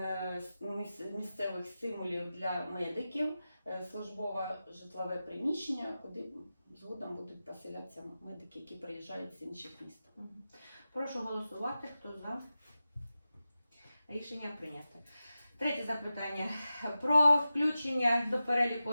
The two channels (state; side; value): inverted; both; correlation -0.94